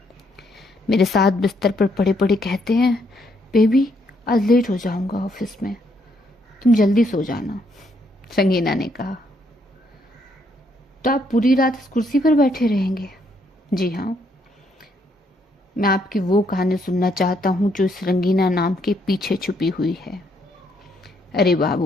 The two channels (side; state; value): both; normal; correlation 0.72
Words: मेरे साथ बिस्तर पर पड़े पड़े कहते हैं, बेबी आज लेट हो जाऊंगा ऑफिस में, तुम जल्दी सो जाना। संगीना ने कहा, तो आप पूरी रात इस कुर्सी पर बैठे रहेंगे? जी हाँ, मैं आपकी वो कहानी सुनना चाहता हूँ जो इस रंगीना नाम के पीछे छुपी हुई है। अरे